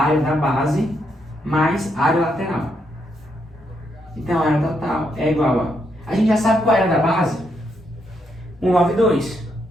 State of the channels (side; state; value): both; normal; correlation 0.78